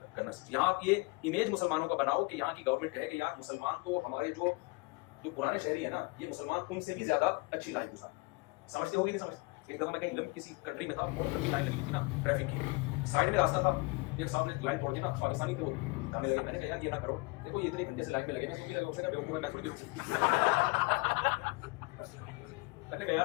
کرنا سیکھو. یہاں یہ امیج مسلمانوں کا بناؤ کہ یہاں کی گورنمنٹ کہے کہ یار مسلمان تو ہمارے جو پرانے شہری ہیں نا، یہ مسلمان تم سے بھی زیادہ اچھی لائف گزارے. سمجھتے ہوگی نہیں سمجھتے؟ ایک دفعہ میں کہیں کسی کنٹری میں تھا، بہت لمبی لائن لگی تھی نا ٹریفک کی، سائڈ میں راستہ تھا، ایک صاحب نے لائن توڑ دی نا، پاکستانی تھے وہ، ہمیں لگے، میں نے کہا یار یہ نہ کرو، دیکھو یہ اتنے گھنٹے سے لائن میں لگے نا، میں نے کہا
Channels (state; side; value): quieter; right; 27.0 dB